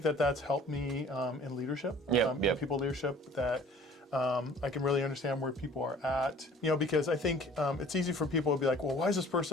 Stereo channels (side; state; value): both; normal; correlation 0.50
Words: that's helped me in leadership, in people leadership, that I can really understand where people are at. Because I think it's easy for people to be like, well, why is this